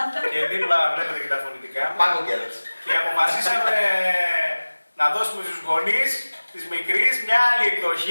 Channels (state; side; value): inverted; both; correlation -1.00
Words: Και δίπλα βλέπετε και τα φωνητικά μου. Και αποφασίσαμε να δώσουμε στους γονείς της μικρής μια άλλη